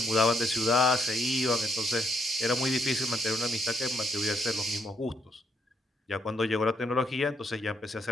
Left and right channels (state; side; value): normal; both; correlation 0.74